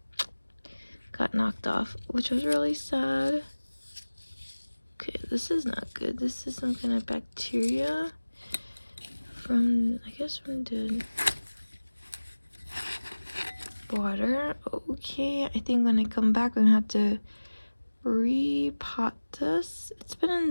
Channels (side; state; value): both; inverted; correlation -1.00